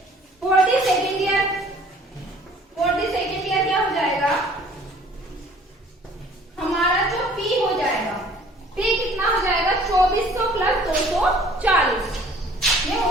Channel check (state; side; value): normal; both; correlation 0.53